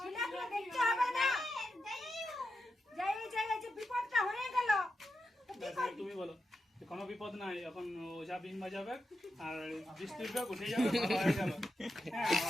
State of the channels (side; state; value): both; normal; correlation 0.87